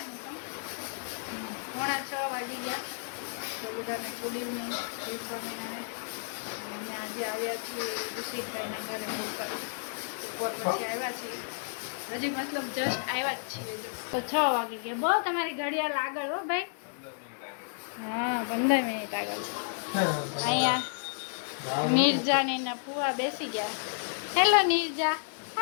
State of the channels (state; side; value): silent; right; digital silence